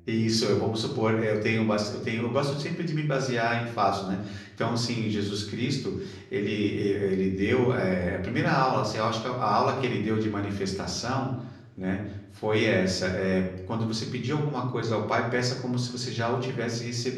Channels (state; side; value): identical; both; correlation 1.00